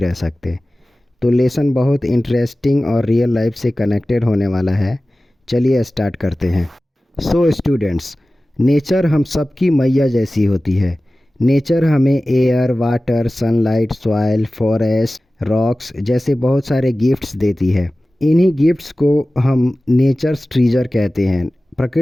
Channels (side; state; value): both; normal; correlation 0.97